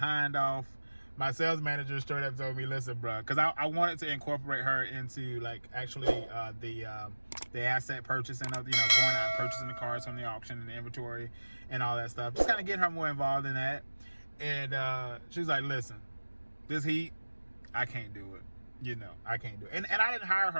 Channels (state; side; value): inverted; both; correlation -1.00